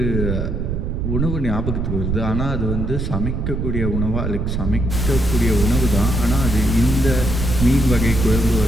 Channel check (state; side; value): noise; right; rumble, 1 dB below the sound